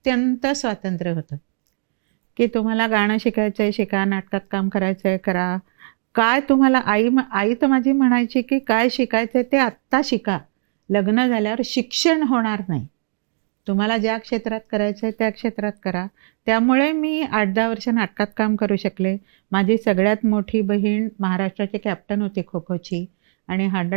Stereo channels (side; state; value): left; silent; digital silence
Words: स्वातंत्र्य होतं की तुम्हाला गाणं शिकायचं आहे शिका, नाटकात काम करायचं आहे करा, काय तुम्हाला. आई तर माझी म्हणायची की काय शिकायचं आहे ते आत्ता शिका, लग्न झाल्यावर शिक्षण होणार नाही, तुम्हाला ज्या क्षेत्रात करायचं आहे त्या क्षेत्रात करा. त्यामुळे मी 8-10 वर्ष नाटकात काम करू शकले. माझी सगळ्यात मोठी बहीण महाराष्ट्राची कॅप्टन होती खो खोची, आणि